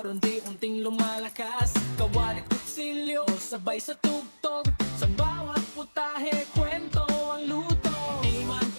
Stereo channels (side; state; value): both; inverted; correlation -1.00